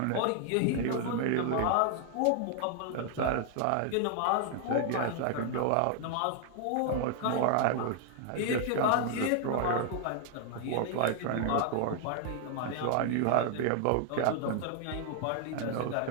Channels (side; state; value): both; different; correlation 0.00